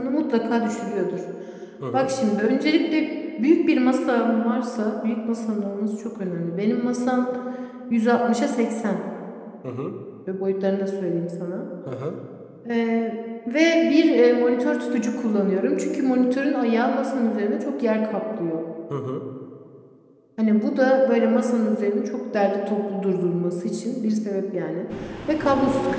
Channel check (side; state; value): both; identical; correlation 1.00